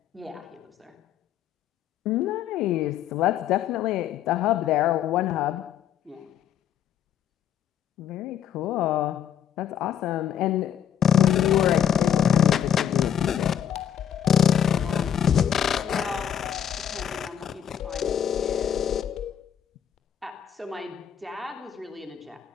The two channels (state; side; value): quieter; right; 9.3 dB